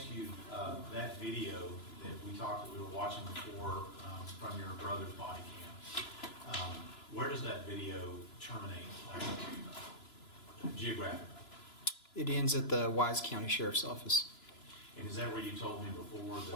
you, that video that we were watching before from your brother's body cam, where does that video terminate geographically? It ends at the Wise County Sheriff's Office. And is that where you told me before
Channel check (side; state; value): right; late; 2.9 ms